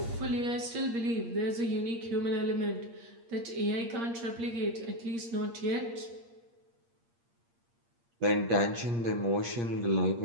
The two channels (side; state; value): left; late; 8.6 ms